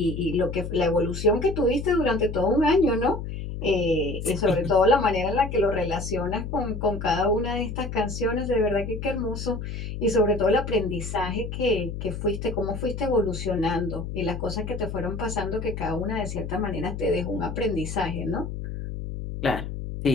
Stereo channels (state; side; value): noise; left; hum, 6 dB below the sound